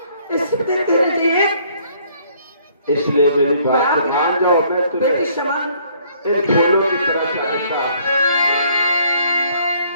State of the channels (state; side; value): inverted; both; correlation -0.63